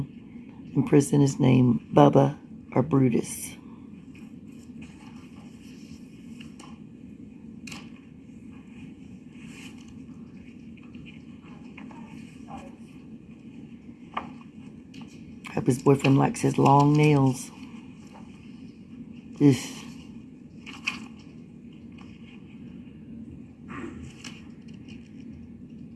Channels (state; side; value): identical; both; correlation 1.00